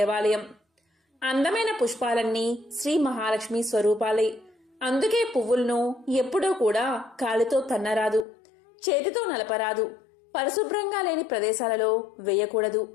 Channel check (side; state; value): right; drops out; at 8.2 s